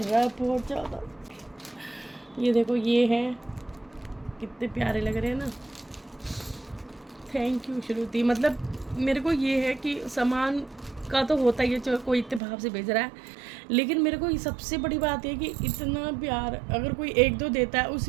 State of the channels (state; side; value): drops out; left; at 12.4 s